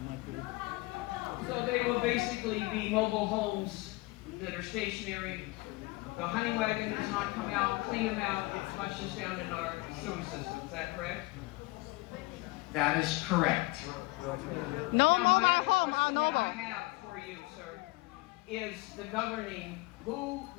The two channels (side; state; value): right; quieter; 23.0 dB